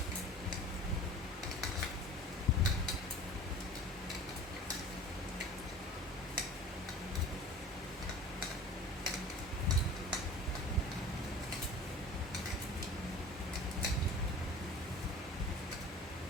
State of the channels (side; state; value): both; normal; correlation 0.41